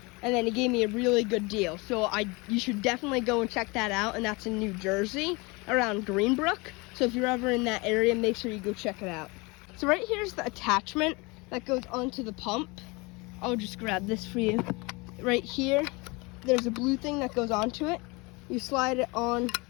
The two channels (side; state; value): right; quieter; 26.3 dB